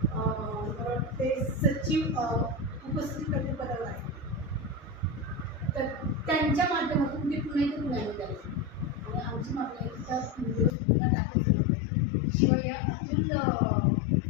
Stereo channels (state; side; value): drops out; right; at 10.8 s